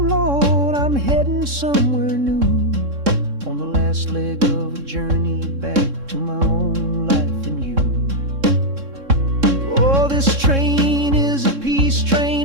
Lord, I'm heading somewhere new, on the last leg of a journey back to my own life and you. Oh, this train is a peace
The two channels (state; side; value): late; left; 3.6 ms